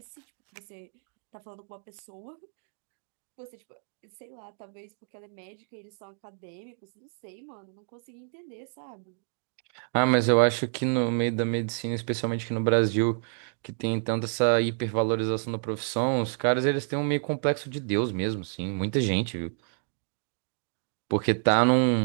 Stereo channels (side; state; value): left; silent; digital silence